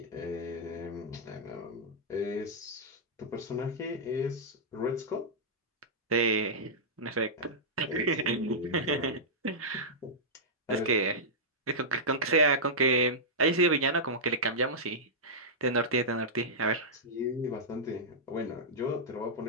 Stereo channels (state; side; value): normal; both; correlation -0.11